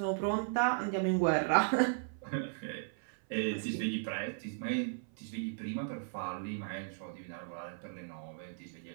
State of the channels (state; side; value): silent; left; 54 dB below the other